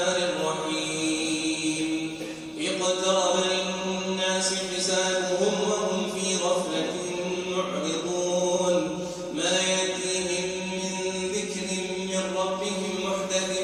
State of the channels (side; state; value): both; identical; correlation 1.00